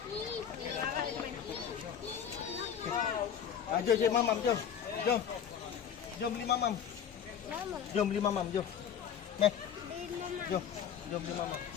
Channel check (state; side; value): quieter; right; 8.4 dB